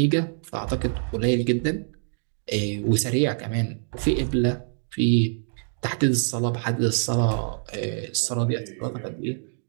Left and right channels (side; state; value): left; silent; digital silence